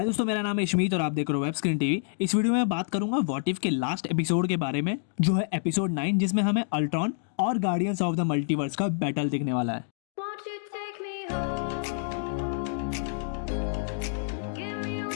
दोस्तों, मेरा नाम है इशमीत और आप देख रहे हो वेब स्क्रीन टीवी। इस वीडियो में मैं बात करूंगा व्हाट इफ के लास्ट एपिसोड के बारे में, जो है एपिसोड 9, जिसमें हमें अल्ट्रॉन और गार्डियंस ऑफ द मल्टीवर्स का बैटल दिखने वाला है। Won't you take me home? Give me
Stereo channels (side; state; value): right; silent; digital silence